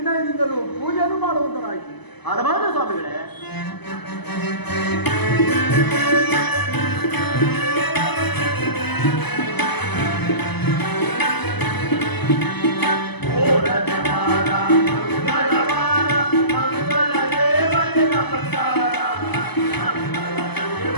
ಪೂಜೆಯನ್ನು ಮಾಡುವಂತರಾಯಿತು. ಹಲವಾರು ಸ್ವಾಮಿಗಳೇ,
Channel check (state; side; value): late; right; 0.99 ms